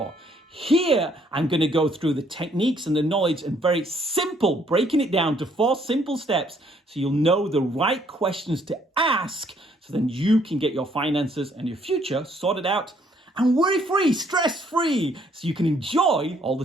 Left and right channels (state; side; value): normal; both; correlation 0.66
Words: Here, I'm going to go through the techniques and the knowledge and very simple, breaking it down to 4 simple steps so you'll know the right questions to ask, so then you can get your finances and your future sorted out and worry-free, stress-free, so you can enjoy all